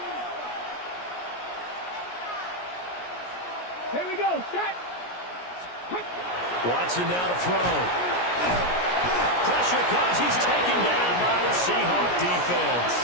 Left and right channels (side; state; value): right; late; 17 ms